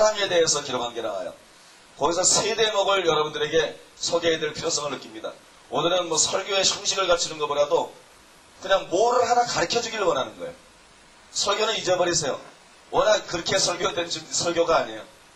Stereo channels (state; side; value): identical; both; correlation 1.00